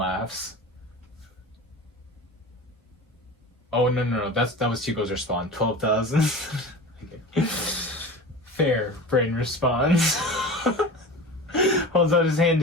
Oh, no. That was Hugo's response. 12,000. Okay. Fair, Brayden responds. Holds out his hand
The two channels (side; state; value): both; normal; correlation 0.33